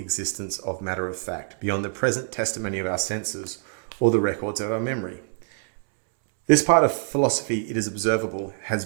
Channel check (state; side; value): silent; left; 62 dB below the other